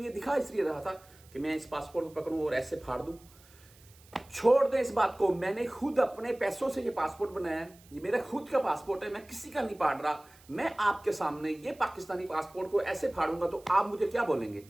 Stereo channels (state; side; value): noise; right; hiss, 26 dB below the sound